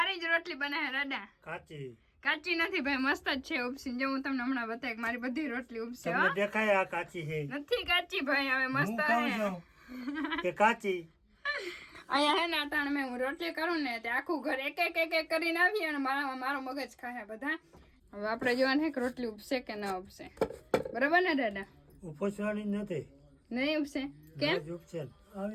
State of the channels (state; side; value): identical; both; correlation 1.00